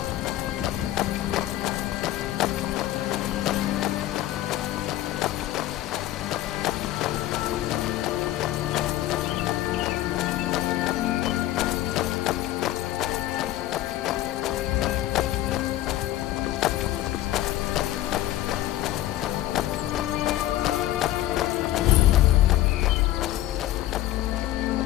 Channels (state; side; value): quieter; right; 14.3 dB